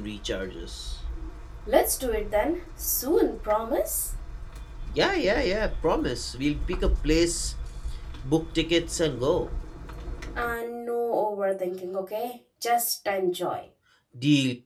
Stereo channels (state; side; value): identical; both; correlation 1.00